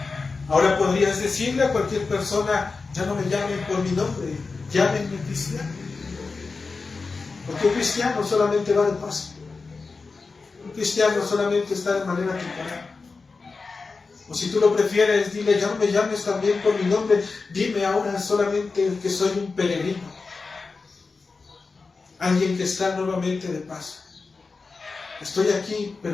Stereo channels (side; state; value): right; quieter; 4.3 dB